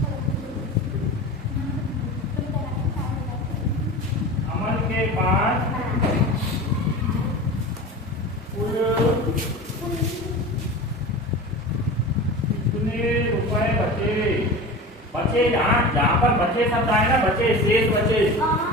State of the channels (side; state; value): both; normal; correlation 0.32